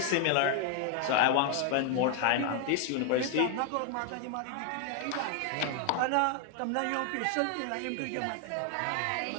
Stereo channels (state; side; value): different; both; correlation 0.00